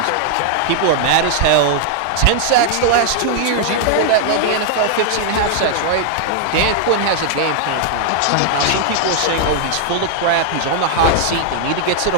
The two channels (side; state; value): both; different; correlation -0.01